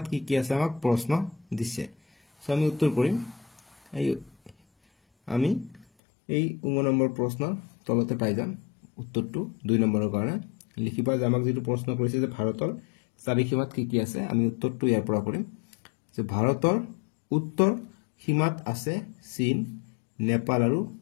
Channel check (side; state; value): right; drops out; at 5.9 s